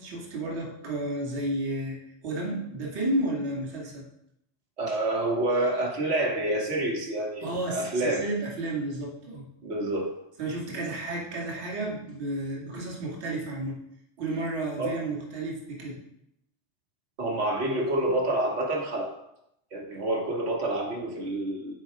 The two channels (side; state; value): left; late; 3.3 ms